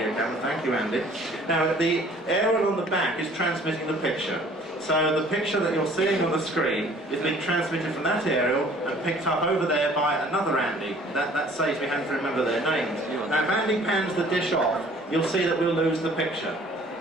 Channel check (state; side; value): normal; both; correlation 0.54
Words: camera. Thank you, Andy. Now, the aerial on the back is transmitting the picture. So the picture that you're seeing on the screen is being transmitted from that aerial and picked up over there by another Andy. That saves me having to remember their names. Now, if Andy pans the dish off, you'll see that we'll lose the picture.